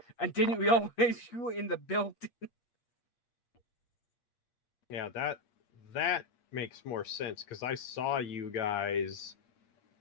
And didn't we always shoot in the building? Yeah, that makes more sense because I saw you guys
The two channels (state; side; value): late; right; 8.5 ms